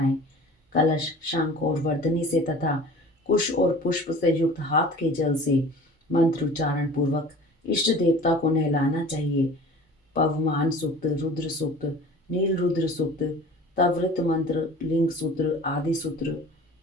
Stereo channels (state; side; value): normal; both; correlation 0.42